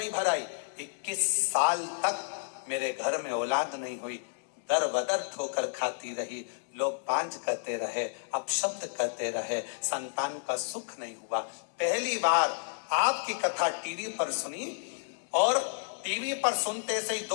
भराई। 21 साल तक मेरे घर में औलाद नहीं हुई। दर बदर ठोकर खाती रही, लोग पांच कहते रहे, अपशब्द कहते रहे, संतान का सुख नहीं हुआ। पहली बार आपकी कथा टीवी पर सुनी और टीवी पर सुनते से ही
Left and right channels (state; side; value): silent; right; digital silence